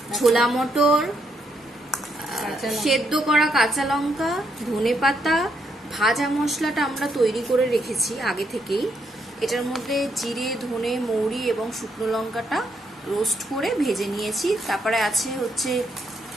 ছোলা মটর, সেদ্ধ করা কাঁচা লঙ্কা, ধনেপাতা, ভাজা মশলাটা আমরা তৈরি করে রেখেছি আগে থেকেই। এটার মধ্যে জিরে, ধনে, মৌরি এবং শুকনো লঙ্কাটা রোস্ট করে ভেজে নিয়েছি। তারপরে আছে হচ্ছে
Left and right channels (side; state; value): both; normal; correlation 0.76